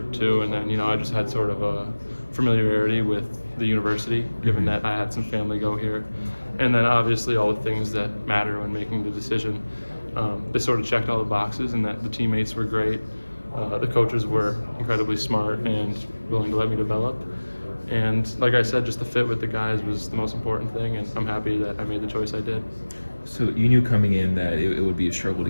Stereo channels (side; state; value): both; inverted; correlation -1.00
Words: to. And then I just had sort of a familiarity with the university, given that I had some family go here, and then obviously all the things that matter when making the decision. They sort of checked all the boxes, and that the teammates were great. The coaches were incredibly smart and willing to let me develop. And like I said, just the fit with the guys was the most important thing, and I'm happy that I made the choice I did. So you knew coming in that it would be a struggle to